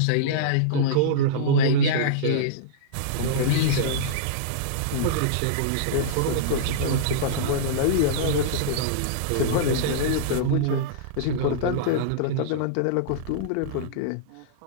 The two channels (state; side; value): different; both; correlation -0.03